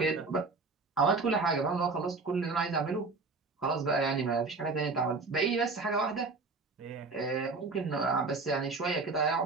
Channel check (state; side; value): quieter; left; 3.9 dB